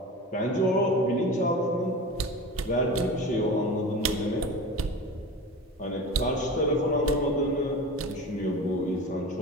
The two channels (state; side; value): normal; both; correlation 0.32